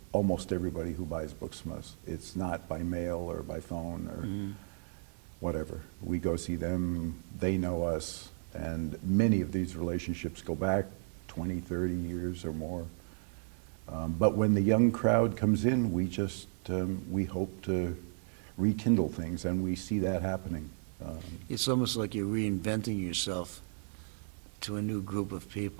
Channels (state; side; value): silent; left; 55 dB below the other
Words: almost everybody who buys books from us. It's not by mail or by phone or whatever. We go see them, they know us, and many of these relationships go back 20, 30 years or more. But when the young crowd comes in, we just, we hope to rekindle things, and we see that happening. It's almost like you're reinventing yourself to a new group of